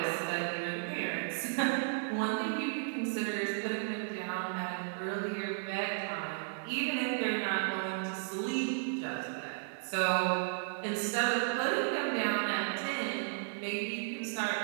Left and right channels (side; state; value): left; silent; 55 dB below the other